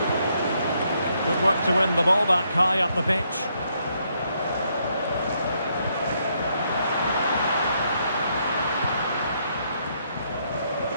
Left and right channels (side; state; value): both; inverted; correlation -0.74